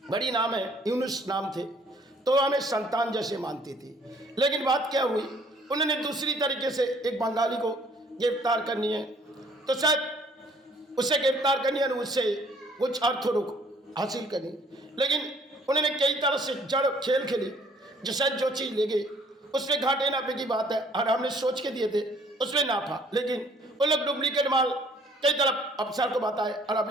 बड़ी नाम है, यूनुस नाम थे, तो हमें संतान जैसे मानती थी। लेकिन बात क्या हुई, उन्होंने दूसरी तरीके से एक बंगाली को गिरफ्तार करनी है, तो शायद उसे गिरफ्तार करनी है, उससे कुछ अर्थ हासिल करनी। लेकिन उन्होंने कई तरह से जड़ खेल खेली, जो शायद जो चीज़ ले गए उसमें घाटे नापे की बात है, और हमने सोच के दिए थे उसमें नाफा। लेकिन वो लोग डुप्लीकेट माल कई तरफ अफसर को बताए और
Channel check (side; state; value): both; normal; correlation 0.60